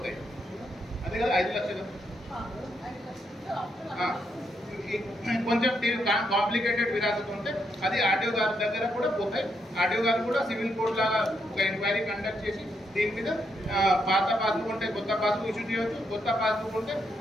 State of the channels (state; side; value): normal; both; correlation 0.79